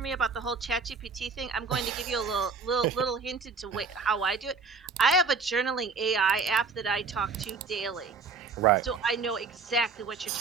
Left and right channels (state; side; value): quieter; left; 4.6 dB